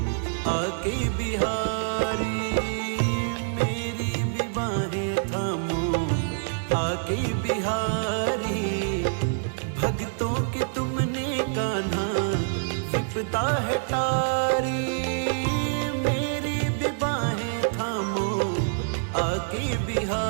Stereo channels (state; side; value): silent; left; digital silence